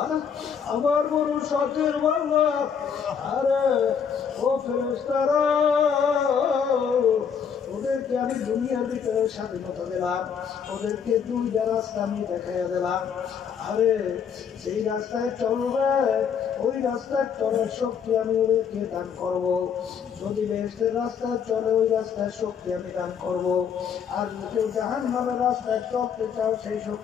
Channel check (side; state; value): right; quieter; 7.2 dB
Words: আমার বড় শখের বাংলা, আরে ও ফেরেশতারা, ওদেরকে আমি দুনিয়ার ভিতরে স্বাধীনতা দিলাম, ওদেরকে দুইটা রাস্তা আমি দেখাইয়া দিলাম। আরে সেই রাস্তায় চলবে, ওই রাস্তায় চলার শক্তি আমি ওদেরকে দান করব। যদি বেহেশতের রাস্তায় চলে ওই রাস্তায় শক্তি আমি দান করব। আর কেউ জাহান্নামের রাস্তায় চলতে চাও সেই